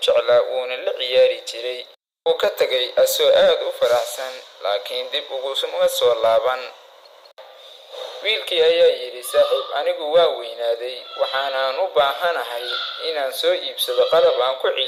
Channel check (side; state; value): both; identical; correlation 1.00